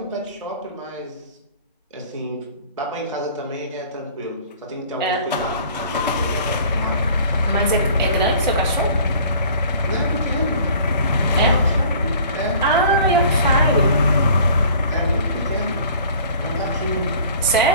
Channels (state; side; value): inverted; both; correlation -0.49